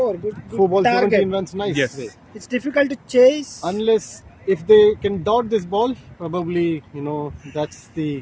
good 4 balls, target. 17 runs, nice. Yes. way. It's difficult to chase. Unless if they can dot this ball, probably that's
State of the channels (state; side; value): identical; both; correlation 1.00